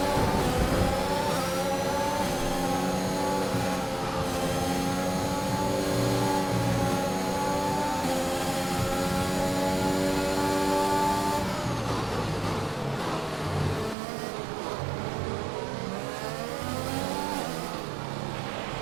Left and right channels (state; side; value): drops out; left; at 14.0 s